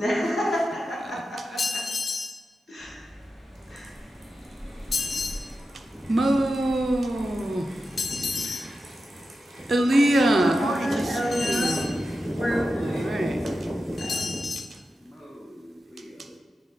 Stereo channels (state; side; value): normal; both; correlation 0.91